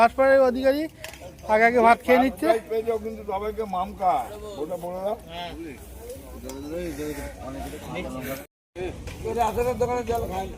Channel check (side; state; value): both; identical; correlation 1.00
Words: প্রাইজ অধিকারী আগে আগে ভাত খেয়ে নিচ্ছে। পেয়েছেও কিন্তু সবাইকে মামকা, ওটা বলে দাও।